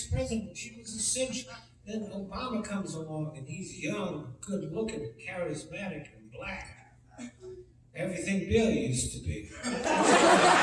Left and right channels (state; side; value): identical; both; correlation 1.00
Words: president. She was a cinch. Then Obama comes along and he's young, good looking, charismatic, and black. Everything Bill used to be.